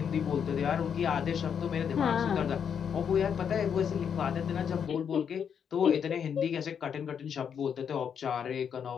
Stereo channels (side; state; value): right; quieter; 7.6 dB